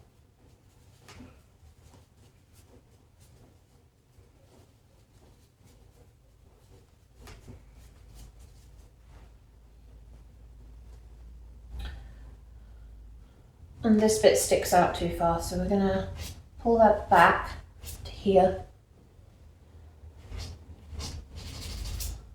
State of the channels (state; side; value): identical; both; correlation 1.00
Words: And this bit sticks out too far, so we're going to pull that back to here.